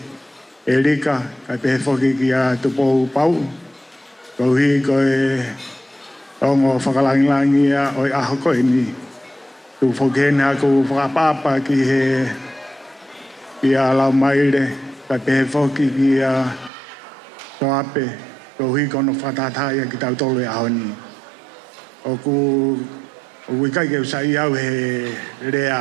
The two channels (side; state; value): left; drops out; at 16.7 s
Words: e rika, ka te whoki ki a tupou pau, kau hi koe Ongo whakalangilangi o i aho koe ni. Tu whokena ku whakapapa ki he a lau Maile, ka pehe whoki ki a Soape, ko hui kono whatataya ki tau tolu e aho ni. O wikai ke usai au he